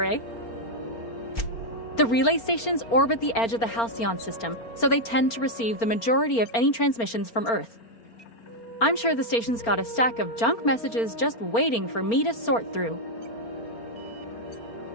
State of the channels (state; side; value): late; right; 4.4 ms